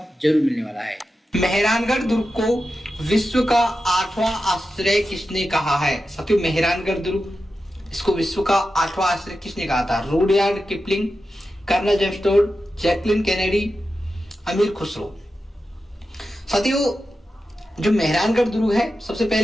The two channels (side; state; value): both; normal; correlation 0.91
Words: जरूर मिलने वाला है। मेहरानगढ़ दुर्ग को विश्व का 8वां आश्चर्य किसने कहा है? साथियों, मेहरानगढ़ दुर्ग इसको विश्व का 8वां आश्चर्य किसने कहा था? Rudyard Kipling, colonel James Tod, Jacqueline Kennedy, Amir Khusrau. साथियों, जो मेहरानगढ़ दुर्ग है सबसे